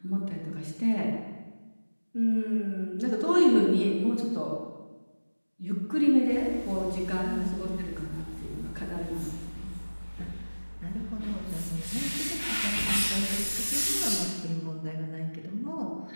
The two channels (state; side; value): inverted; both; correlation -1.00